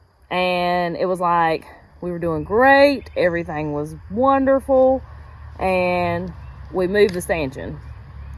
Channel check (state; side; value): identical; both; correlation 1.00